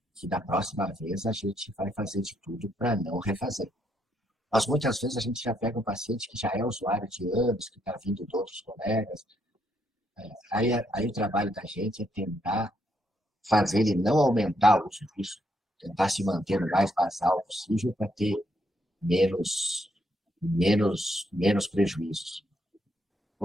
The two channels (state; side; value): normal; both; correlation 0.75